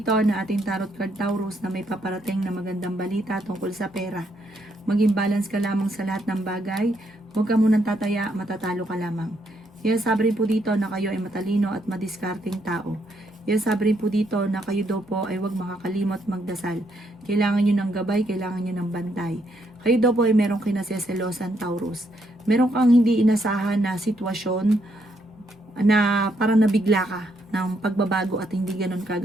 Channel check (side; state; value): both; normal; correlation 0.75